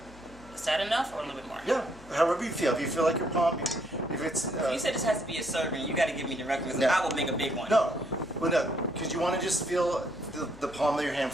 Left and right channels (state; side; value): noise; left; hum, 20 dB below the sound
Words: Is that enough or a little bit more? Yeah. However you feel. If you feel like your palm, if it's. You said this has to be a serving. You got to give me directions. No. I will make a big one. No. Well, no. Because you want to just feel the palm of your hand